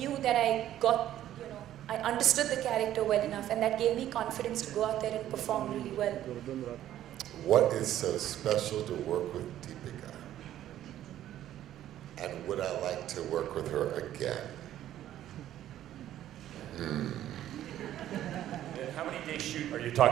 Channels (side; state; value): left; quieter; 12.3 dB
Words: that I understood the character well enough, and that gave me confidence to go out there and perform really well. What is so special to work with Deepika? And would I like to work with her again? How many day shoot are you